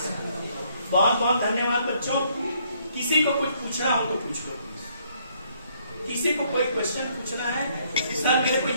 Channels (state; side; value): inverted; both; correlation -0.68